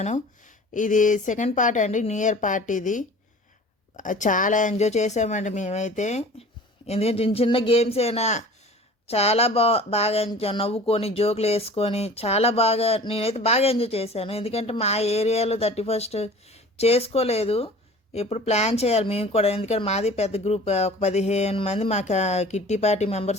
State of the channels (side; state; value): both; normal; correlation 0.44